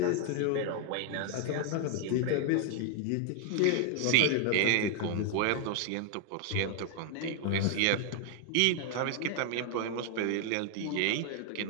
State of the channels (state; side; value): different; both; correlation 0.00